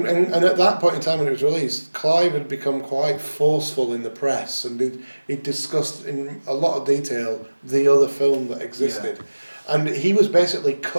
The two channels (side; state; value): both; inverted; correlation -1.00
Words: at that point in time when it was released, Clive had become quite forceful in the press, and he discussed in a lot of detail the other film that existed. Yeah. And he was basically